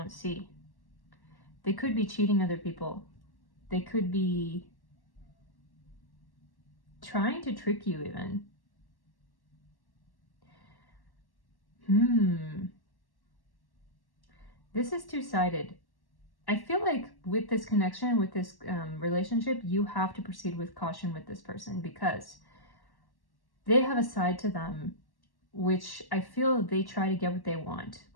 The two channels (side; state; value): right; late; 1.1 ms